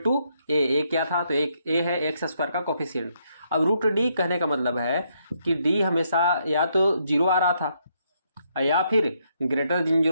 क्या था, तो एक a है x² का कोफिशिएंट। अब √d कहने का मतलब है कि d हमेशा या तो 0 आ रहा था या फिर ग्रेटर देन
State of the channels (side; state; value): both; inverted; correlation -0.75